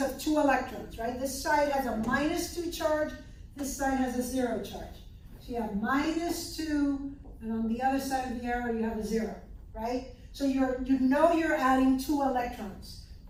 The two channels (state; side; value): identical; both; correlation 1.00